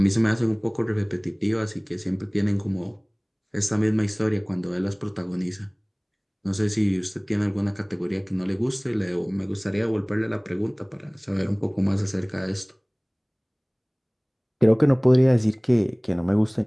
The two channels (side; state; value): both; identical; correlation 1.00